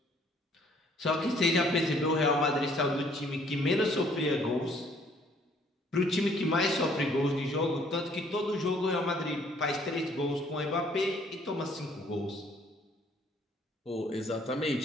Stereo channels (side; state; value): both; normal; correlation 0.61